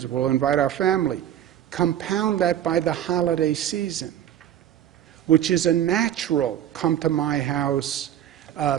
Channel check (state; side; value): quieter; left; 10.8 dB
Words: We'll invite our family. Compound that by the holiday season, which is a natural come to my house,